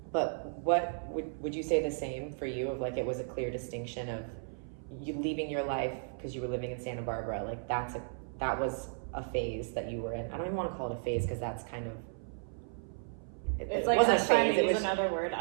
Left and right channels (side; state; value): left; silent; 55 dB below the other